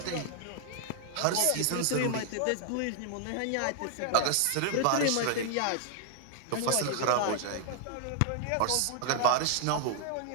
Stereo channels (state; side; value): different; both; correlation -0.01